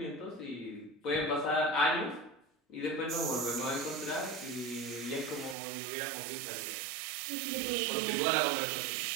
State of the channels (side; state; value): left; drops out; at 5.6 s